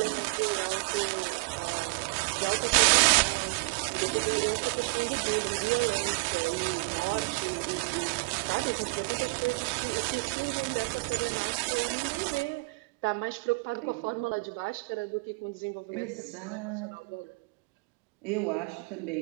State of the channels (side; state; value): left; quieter; 30.6 dB